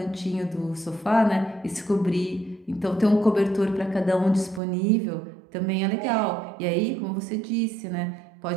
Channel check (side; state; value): left; drops out; at 4.6 s